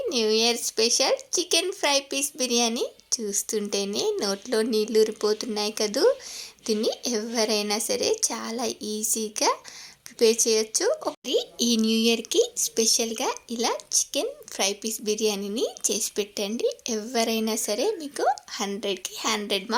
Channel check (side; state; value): both; identical; correlation 1.00